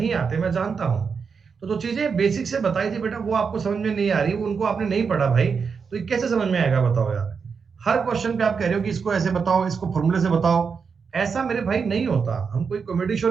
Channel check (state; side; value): quieter; left; 5.8 dB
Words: आते, मैं जानता हूं। तो जो चीजें बेसिक से बताई थी बेटा वो आपको समझ में नहीं आ रही, वो उनको आपने नहीं पढ़ा भाई, तो ये कैसे समझ में आएगा बताओ यार। हर क्वेश्चन पे आप कह रहे हो कि इसको ऐसे बताओ, इसको फॉर्मूले से बताओ। ऐसा मेरे भाई नहीं होता। हम कोई कॉमेडी शो